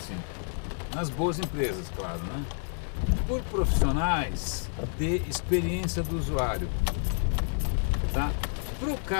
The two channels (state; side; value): silent; right; 58 dB below the other